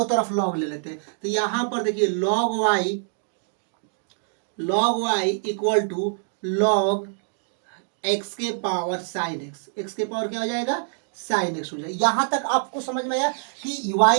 तरफ लॉग ले लेते हैं। तो यहां पर देखिए log y equal to log x के पावर साइन x के पावर क्या हो जाएगा, साइन एक्स हो जाए। यहां तक आपको समझ में आया कि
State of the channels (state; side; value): silent; left; digital silence